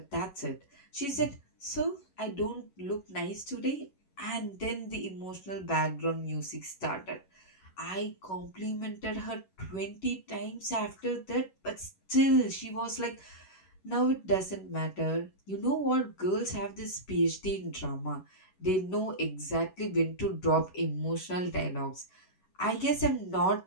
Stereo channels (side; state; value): right; late; 11 ms